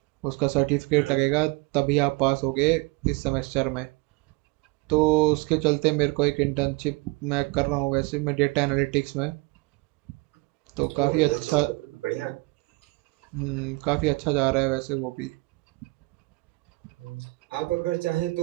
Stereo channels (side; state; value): left; quieter; 24.8 dB